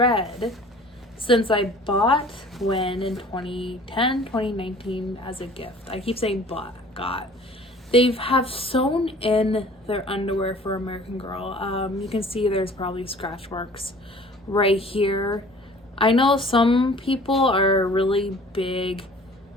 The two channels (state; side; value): normal; both; correlation 0.48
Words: since I bought Gwen in 2010, 2019 as a gift. I keep saying got. They have sewn in their underwear for American Girl. You can see there's probably scratch marks right here. I know some people are really big,